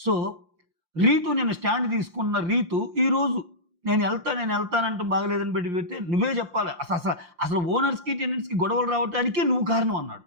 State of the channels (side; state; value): left; late; 5.7 ms